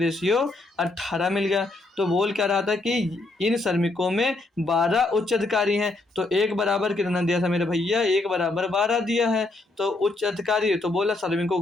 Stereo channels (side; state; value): right; quieter; 3.0 dB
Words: 18 मिल गया। तो बोल क्या रहा था कि इन श्रमिकों में 12 उच्च अधिकारी हैं। तो एक बराबर कितना दिया था मेरे भैया? एक बराबर 12 दिया है। तो उच्च अधिकारी तो बोला श्रमिकों